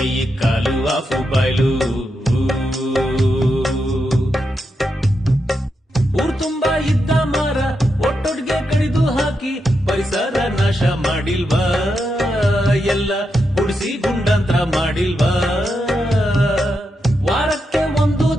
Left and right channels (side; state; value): both; normal; correlation 0.85